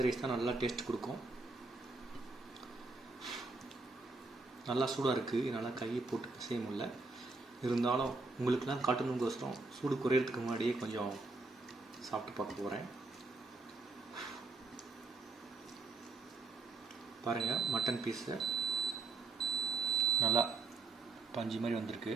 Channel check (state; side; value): quieter; left; 3.6 dB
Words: ரைஸ் தான் நல்லா டேஸ்ட் கொடுக்கும். நல்லா சூடாக இருக்குது, என்னால் கையை போட்டு பிசைய முடியல. இருந்தாலும் உங்களுக்குலாம் காட்டணுங்கோசரம் சூடு குறையிறதுக்கு முன்னாடியே கொஞ்சம் சாப்பிட்டு பார்க்க போகிறேன். பாருங்கள், மட்டன் பீஸு நல்லா பஞ்சு மாதிரி வந்திருக்கு.